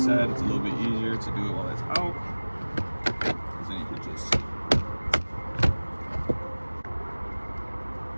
it's a little bit easier to do it while it's out. Because then you can just...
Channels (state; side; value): inverted; both; correlation -1.00